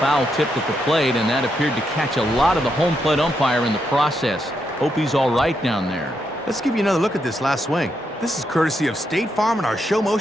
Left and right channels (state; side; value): normal; both; correlation 0.81